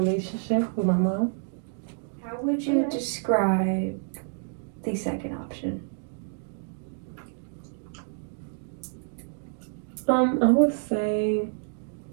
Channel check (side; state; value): left; silent; 59 dB below the other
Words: with my mom. How would you describe the second option? I would say,